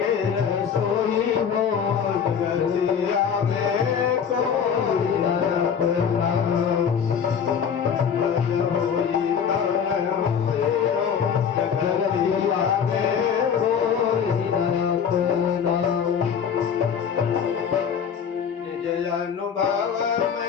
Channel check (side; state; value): right; quieter; 7.4 dB